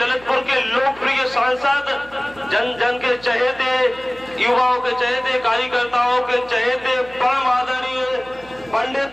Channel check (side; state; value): right; noise; hum, 23 dB below the sound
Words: के लोकप्रिय सांसद, जन जन के चहेते, युवाओं के चहेते, कार्यकर्ताओं के चहेते, परम आदरणीय